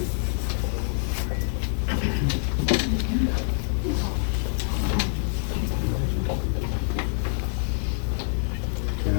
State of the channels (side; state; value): right; silent; 59 dB below the other